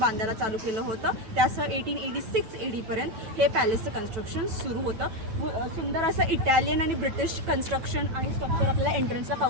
चालू केलं होतं. त्यासह 1886 AD पर्यंत हे पॅलेसचं कन्स्ट्रक्शन सुरू होतं. सुंदर असं इटालियन आणि ब्रिटिश कन्स्ट्रक्शन आणि स्ट्रक्चर आपल्याला एंट्रन्सला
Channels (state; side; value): late; left; 9.1 ms